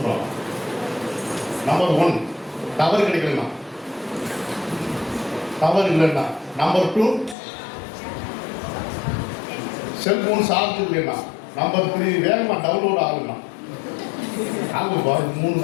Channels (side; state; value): right; drops out; at 7.4 s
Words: நம்பர் 1 டவர் கிடைக்கலன்னா, டவர் இல்லைன்னா. நம்பர் 2 செல்போன் சார்ஜ் இல்லைன்னா. நம்பர் 3 வேகமாக டவுன்லோட் ஆகுதுன்னா. ஆகும் 3